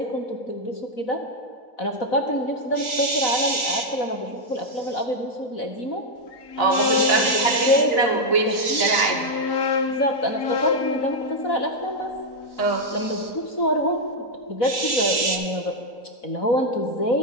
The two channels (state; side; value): late; right; 4.0 ms